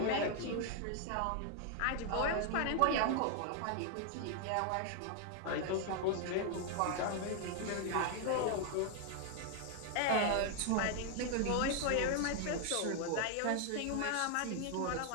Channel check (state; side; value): different; both; correlation 0.00